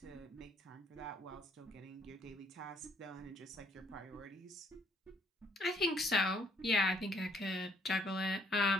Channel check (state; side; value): normal; both; correlation 0.66